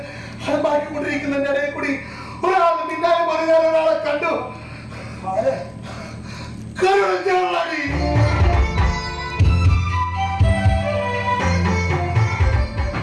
അലമ്പാക്കിക്കൊണ്ടിരിക്കുന്നതിന്റെ ഇടയിൽ കൂടി ഒരാൾ പിന്നാലെ പറഞ്ഞാൽ ഒരാളെ കണ്ടു. കരുണാടി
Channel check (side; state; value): both; identical; correlation 1.00